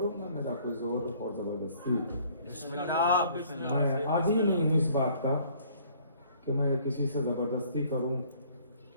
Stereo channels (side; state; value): both; inverted; correlation -0.58